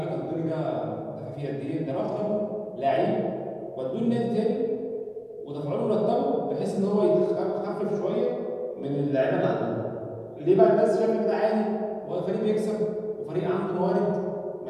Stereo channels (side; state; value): both; identical; correlation 1.00